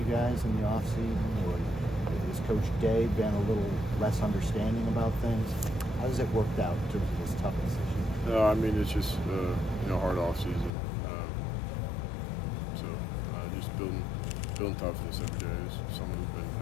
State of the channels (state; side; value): drops out; right; at 10.7 s